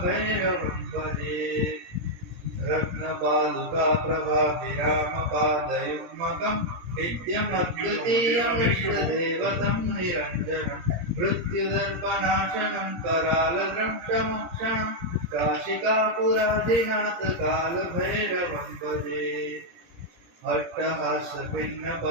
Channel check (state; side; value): late; left; 17 ms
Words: भजे रत्नपादुका प्रभाभिरामपादयुग्मकं नित्यमद्वितीयमिष्टदेवतं निरञ्जनं मृत्युदर्पनाशनं करालद्रष्टमोक्षणं काशिकापुरादिनाथ कालभैरवं भजे